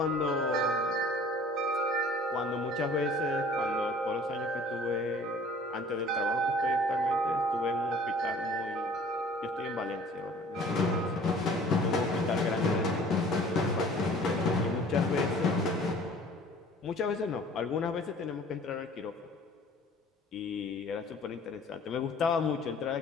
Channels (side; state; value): both; normal; correlation 0.50